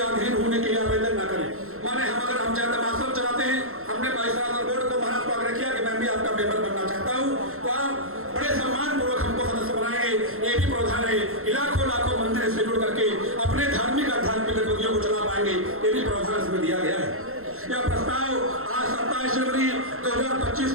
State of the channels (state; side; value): late; left; 0.62 ms